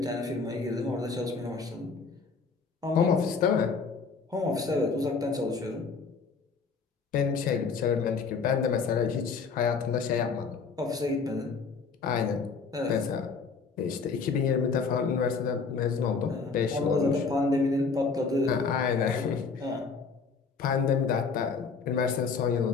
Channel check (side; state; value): right; quieter; 5.0 dB